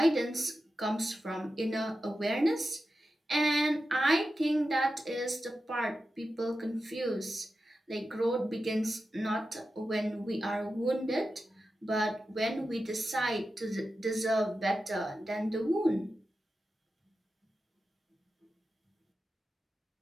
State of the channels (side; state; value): both; normal; correlation 0.91